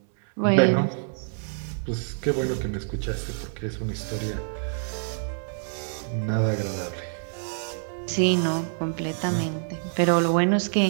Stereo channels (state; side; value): silent; left; 61 dB below the other